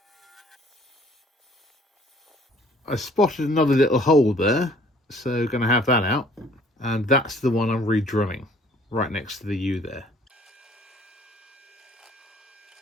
I spotted another little hole there, so going to have that out. And that's the one I'm re-drilling, right next to the U there.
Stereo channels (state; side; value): normal; both; correlation 0.57